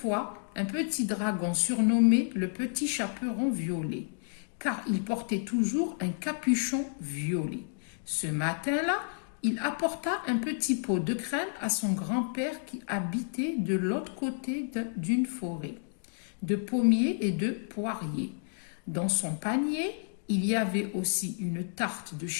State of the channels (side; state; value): right; silent; digital silence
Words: un petit dragon surnommé le petit chaperon violet, car il portait toujours un capuchon violet. Ce matin-là, il apporta un petit pot de crème à son grand-père qui habitait de l'autre côté d'une forêt, de pommiers et de poiriers. Dans son panier, il y avait aussi une tarte de